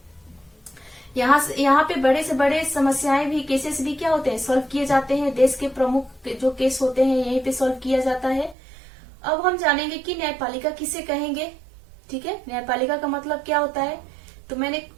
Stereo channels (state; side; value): drops out; left; at 8.6 s